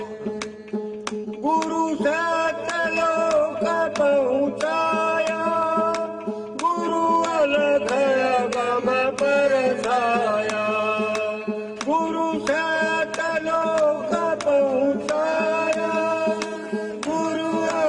गुरु सतलोक पहुँचाया, गुरु अलग गम बरसाया। गुरु सतलोक पहुँचाया, गुरु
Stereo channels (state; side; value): identical; both; correlation 1.00